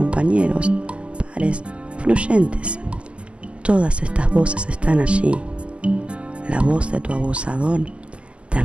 pares, influyentes. Todas estas voces están allí. La voz de tu abusador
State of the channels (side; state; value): left; late; 0.055 ms